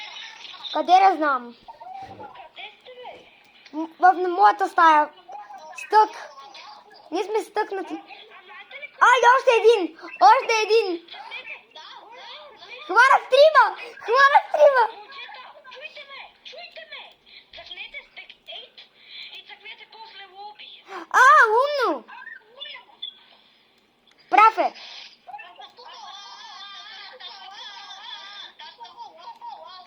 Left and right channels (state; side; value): identical; both; correlation 1.00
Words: Къде да знам? Къде сте, бе? В моята стая. Стък. Ние сме стъкнати. Ай, още един! Още един! Хванах трима! Хванах трима! Момчета, чуйте ме! Цъкнете стек 8 и цъкнете после лоби. Умно! Прав е.